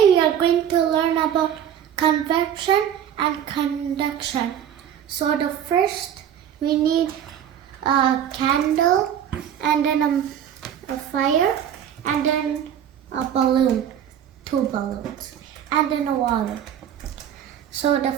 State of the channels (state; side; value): quieter; left; 9.6 dB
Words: we are going to learn about convection and conduction. So the first we need a candle and then a fire and then a balloon, 2 balloons, and then a water. So the